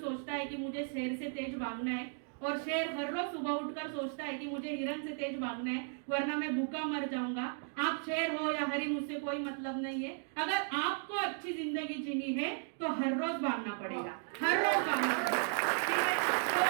है कि मुझे शेर से तेज भागना है, और शेर हर रोज सुबह उठकर सोचता है कि मुझे हिरन से तेज भागना है वरना मैं भूखा मर जाऊंगा। आप शेर हो या हरिन, उससे कोई मतलब नहीं है। अगर आपको अच्छी जिंदगी जीनी है तो हर रोज भागना पड़ेगा, हर रोज भागना पड़ेगा।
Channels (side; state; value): left; silent; 54 dB below the other